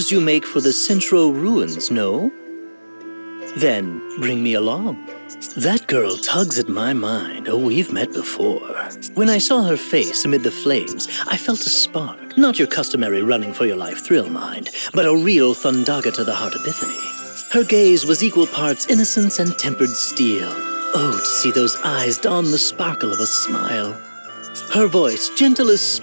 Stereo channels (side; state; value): both; inverted; correlation -1.00